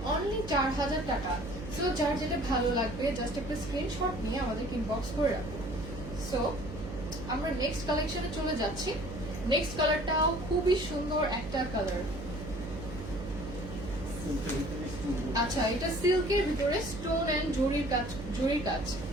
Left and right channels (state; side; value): noise; right; hum, 9 dB below the sound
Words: অনলি 4000 টাকা। সো যার যেটা ভালো লাগবে জাস্ট একটা স্ক্রিনশট নিয়ে আমাদের ইনবক্স করে রাখুন। সো আমরা নেক্সট কালেকশনে চলে যাচ্ছি। নেক্সট কালারটাও খুবই সুন্দর একটা কালার। আচ্ছা, এটা সিল্কের ভিতরে স্টোন এন্ড জরির কাজ।